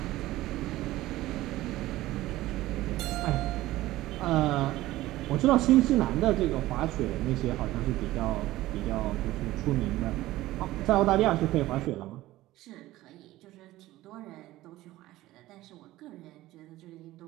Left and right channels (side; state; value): left; quieter; 16.6 dB